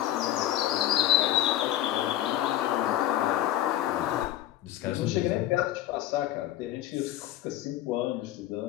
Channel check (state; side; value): quieter; right; 13.1 dB